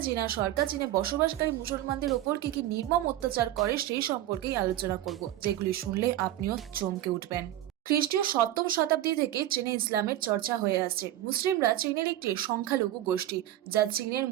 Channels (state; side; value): quieter; left; 13.5 dB